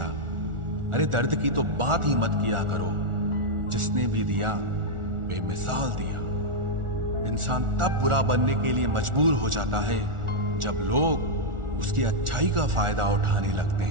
अरे दर्द की तो बात ही मत किया करो, जिसने भी दिया बेमिसाल दिया। इंसान तब बुरा बनने के लिए मजबूर हो जाता है जब लोग उसकी अच्छाई का फायदा उठाने लगते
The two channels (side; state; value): left; late; 1.4 ms